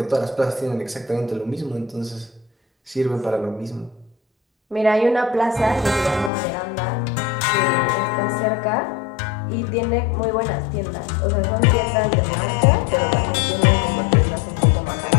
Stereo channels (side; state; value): right; drops out; at 6.3 s